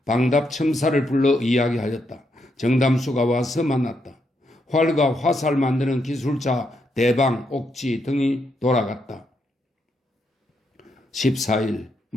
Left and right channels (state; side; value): normal; both; correlation 0.79